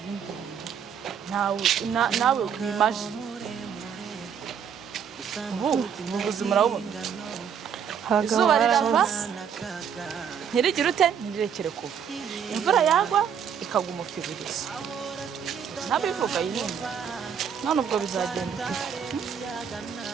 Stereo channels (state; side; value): quieter; left; 7.7 dB